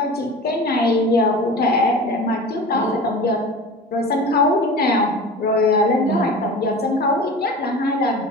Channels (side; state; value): both; normal; correlation 0.35